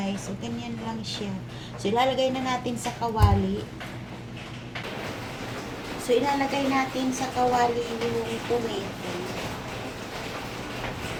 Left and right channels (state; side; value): identical; both; correlation 1.00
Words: So, ganyan lang siya. So, ilalagay na natin sa kawali. So, ilalagay natin sa kawali yung tomato.